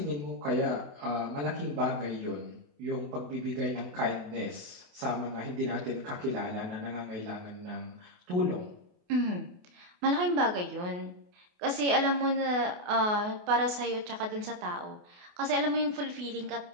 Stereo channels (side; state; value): left; late; 28 ms